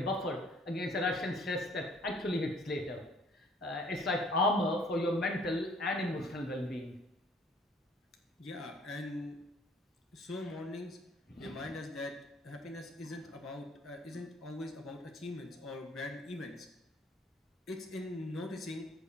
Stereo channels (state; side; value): normal; both; correlation 0.58